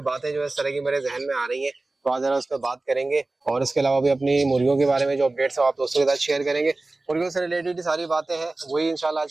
बातें जो है इस तरह की मेरे जहन में आ रही हैं, तो आज जरा उस पर बात करेंगे। और इसके अलावा भी अपनी मुर्गियों के बारे में जो अपडेट्स है आप दोस्तों के साथ शेयर करेंगे। मुर्गियों से रिलेटेड सारी बातें हैं वही इंशाल्लाह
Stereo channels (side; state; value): left; quieter; 3.1 dB